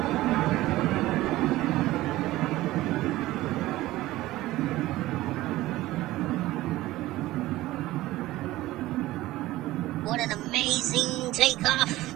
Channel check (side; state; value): left; quieter; 17.0 dB